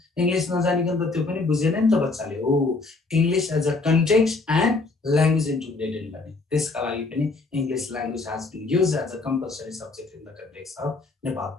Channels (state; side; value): quieter; right; 3.6 dB